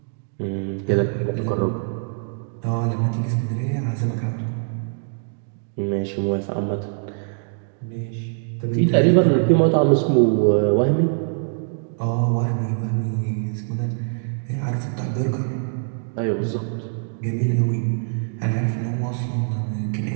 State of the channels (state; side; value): silent; left; digital silence